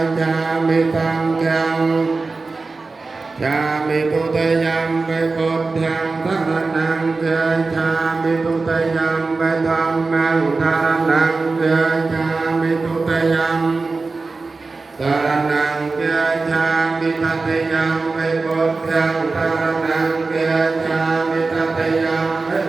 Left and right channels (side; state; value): left; quieter; 3.9 dB